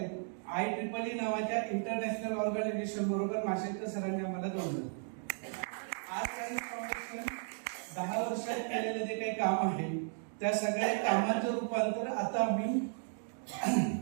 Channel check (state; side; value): silent; left; 54 dB below the other